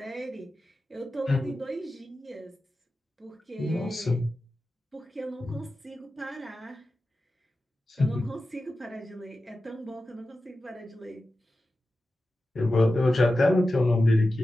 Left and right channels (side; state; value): both; normal; correlation 0.93